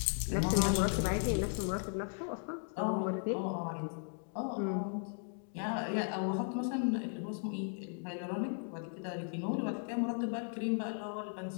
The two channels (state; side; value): silent; right; 53 dB below the other